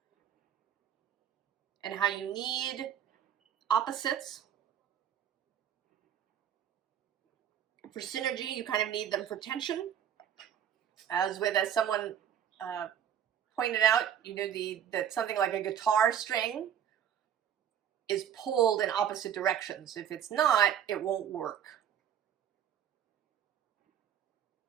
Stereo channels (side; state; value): left; quieter; 9.5 dB